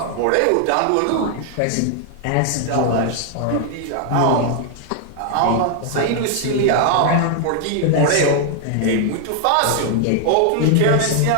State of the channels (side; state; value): both; different; correlation 0.00